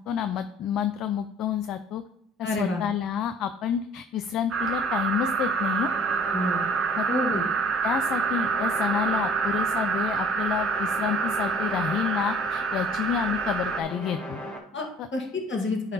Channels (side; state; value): both; normal; correlation 0.52